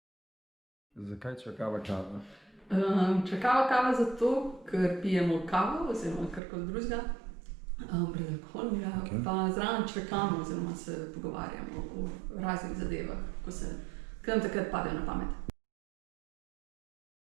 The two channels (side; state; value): left; drops out; at 6.4 s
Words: Zakaj čakava kava? Čakava kava zato, ker pijemo kavo oziroma karkoli drugega, brezalkoholnega, Okej. pa zraven čakamo oziroma se pogovarjamo o raznih zadevah, ko nam takrat padejo na pamet.